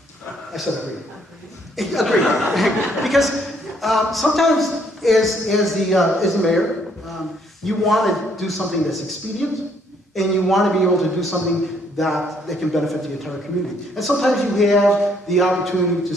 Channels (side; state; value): both; normal; correlation 0.67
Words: said agree. Agree. Because sometimes, as the mayor, you want to do something that's expedient, and you want to be able to do something that can benefit the entire community. And sometimes you have the opportunity to